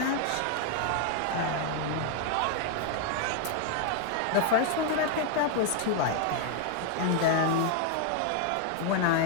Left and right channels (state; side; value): different; both; correlation 0.00